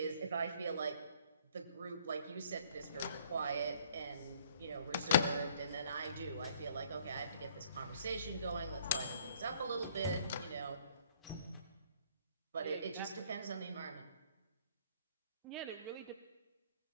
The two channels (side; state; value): both; inverted; correlation -0.61